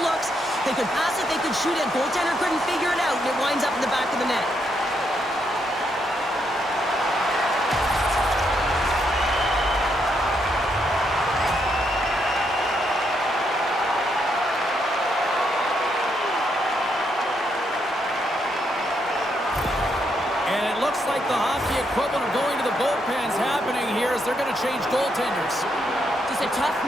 looks. They could pass it, they could shoot it. Goaltender couldn't figure it out, and it winds up in the back of the net. And it looks like the hockey equivalent of going to the bullpen's happening here as they're going to change goaltenders. Just a tough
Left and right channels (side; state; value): both; normal; correlation 0.77